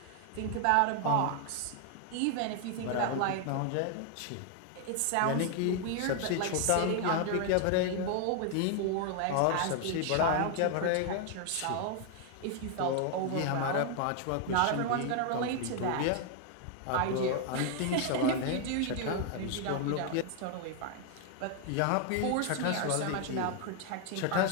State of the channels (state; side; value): different; both; correlation 0.00